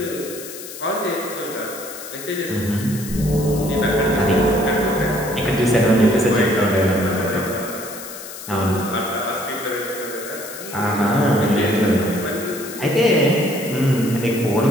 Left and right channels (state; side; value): noise; left; hiss, 12 dB below the sound